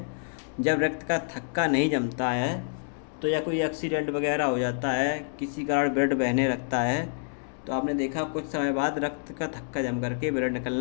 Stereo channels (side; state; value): right; silent; 59 dB below the other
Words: जब रक्त का थक्का नहीं जमता है, तो या कोई एक्सीडेंट वगैरह हो जाता है, किसी कारण ब्लड बहने लगता है, तो आपने देखा कुछ समय बाद रक्त का थक्का जम करके ब्लड